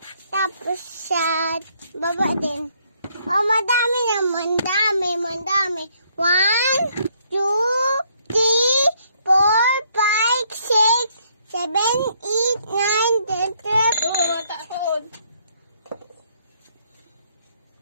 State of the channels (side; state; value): both; inverted; correlation -0.69